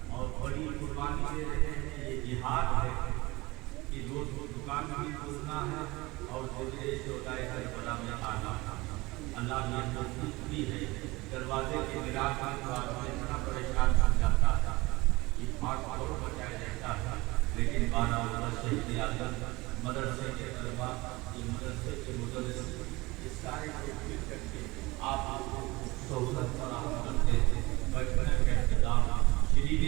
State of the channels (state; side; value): quieter; left; 21.9 dB